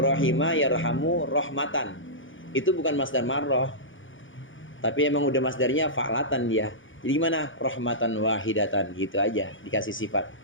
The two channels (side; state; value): right; late; 0.57 ms